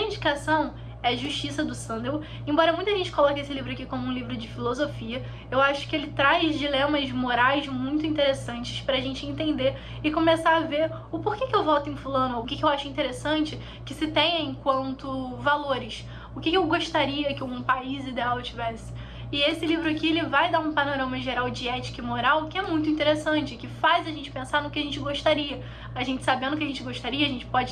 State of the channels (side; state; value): both; identical; correlation 1.00